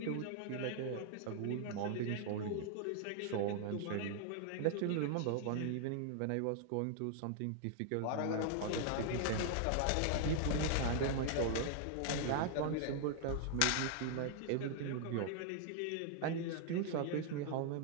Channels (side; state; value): both; different; correlation 0.00